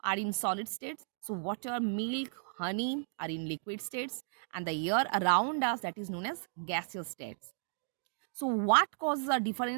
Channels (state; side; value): silent; left; digital silence